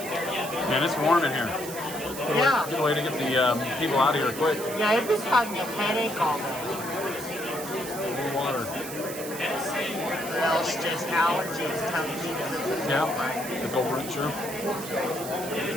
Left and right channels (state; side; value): noise; right; hiss, 10 dB below the sound